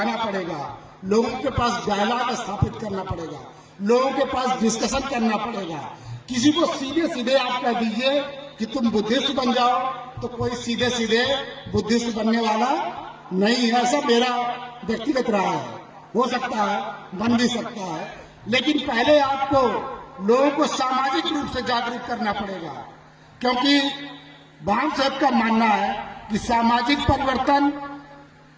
पड़ेगा, लोगों के पास डायलॉग स्थापित करना पड़ेगा, लोगों के पास डिस्कशन करना पड़ेगा। किसी को सीधे सीधे आप कह दीजिए कि तुम बुद्धिस्ट बन जाओ, तो कोई सीधे सीधे बुद्धिस्ट बनने वाला नहीं है। ऐसा मेरा व्यक्तिगत राय है। हो सकता है, बन भी सकता है, लेकिन पहले आपको लोगों को सामाजिक रूप से जागरूक करना पड़ेगा, क्योंकि वामसेफ का मानना है कि सामाजिक परिवर्तन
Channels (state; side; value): identical; both; correlation 1.00